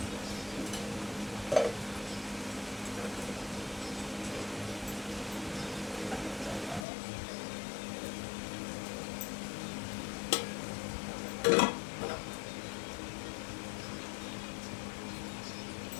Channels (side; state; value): right; drops out; at 6.9 s